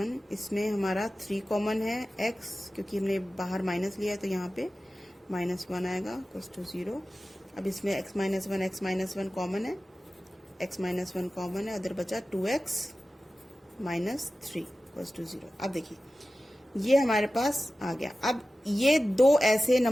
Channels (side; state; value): both; normal; correlation 0.95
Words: इसमें हमारा 3 कॉमन है, x क्योंकि हमने बाहर माइनस लिया है तो यहाँ पे माइनस 1 आएगा इक्वल्स टू 0। अब इसमें x माइनस 1 कॉमन है, x माइनस 1 कॉमन है, उधर बचा 2x माइनस 3 इक्वल्स टू 0। अब देखिए ये हमारे पास आ गया। अब ये दो ऐसे